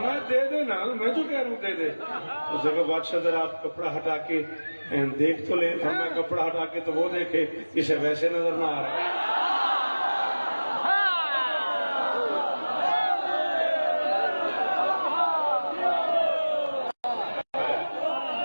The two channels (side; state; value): both; inverted; correlation -1.00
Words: दे दे ना, मैं तो कह रहा हूँ दे दे। उसने कहा बादशाह जरा आप कपड़ा हटा के देख तो ले। फरमाया कपड़ा हटा के तो वो देखे, इसे वैसे नजर ना आ रहा है।